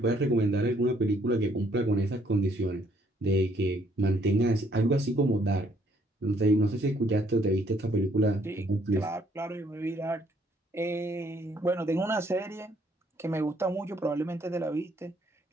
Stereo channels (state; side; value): normal; both; correlation 0.66